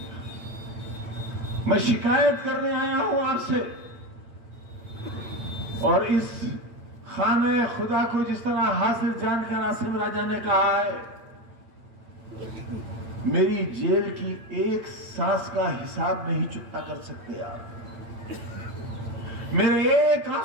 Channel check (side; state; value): left; late; 8.9 ms